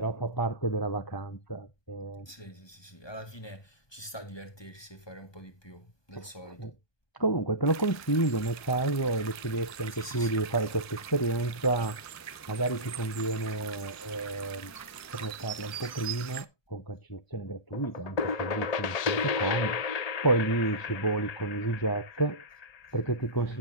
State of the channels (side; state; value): right; late; 1.2 ms